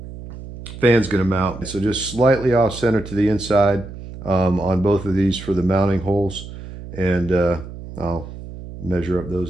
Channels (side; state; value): right; noise; hum, 13 dB below the sound